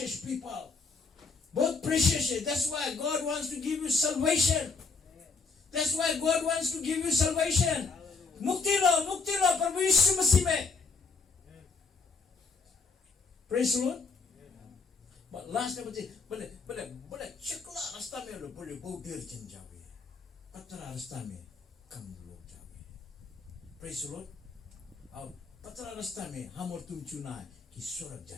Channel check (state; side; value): quieter; right; 4.5 dB